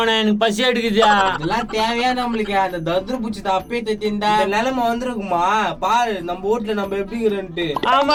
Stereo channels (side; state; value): both; identical; correlation 1.00